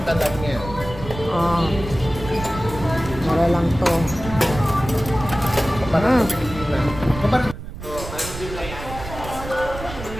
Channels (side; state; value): right; noise; rumble, 11 dB below the sound